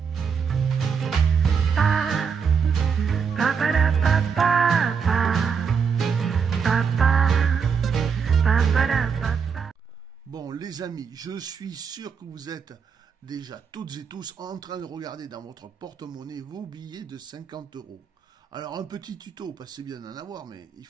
Bon, les amis, je suis sûr que vous êtes déjà toutes et tous en train de regarder dans votre porte-monnaie vos billets de 50 euros. Alors, un petit tuto, parce que c'est bien d'en avoir, mais il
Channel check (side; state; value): left; quieter; 6.3 dB